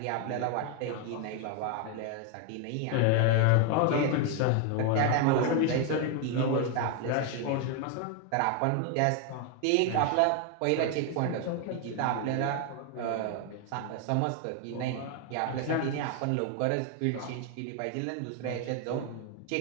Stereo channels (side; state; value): both; different; correlation 0.01